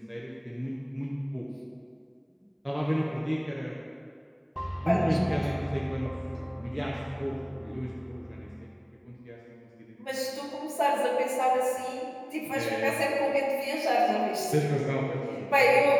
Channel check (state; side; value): identical; both; correlation 1.00